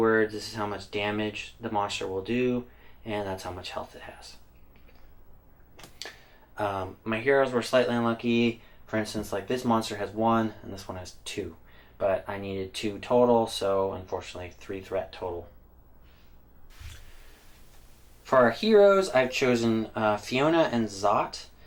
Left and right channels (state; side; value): identical; both; correlation 1.00